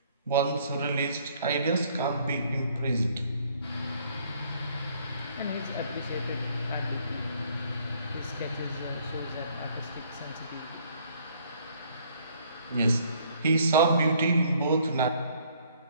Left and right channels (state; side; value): inverted; both; correlation -0.62